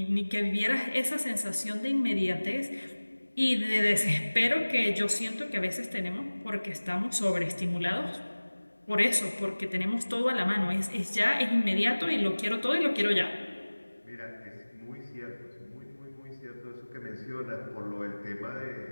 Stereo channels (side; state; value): both; inverted; correlation -1.00